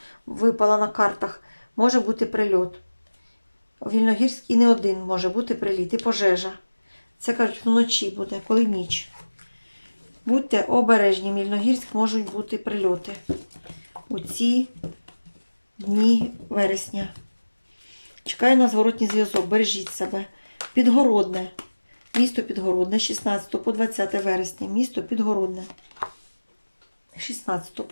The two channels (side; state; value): both; inverted; correlation -1.00